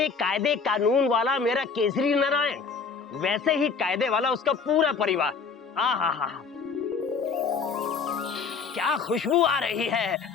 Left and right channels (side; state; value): right; quieter; 5.4 dB